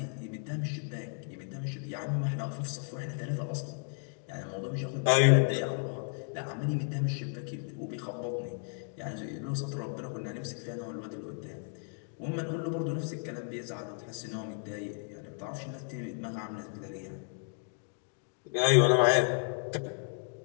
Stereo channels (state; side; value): silent; right; 55 dB below the other